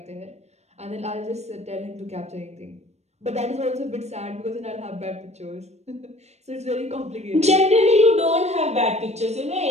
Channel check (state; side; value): late; left; 0.32 ms